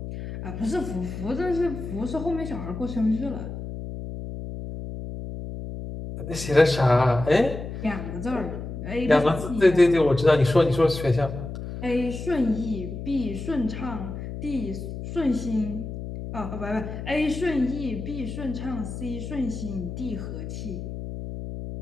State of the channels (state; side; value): noise; left; hum, 8 dB below the sound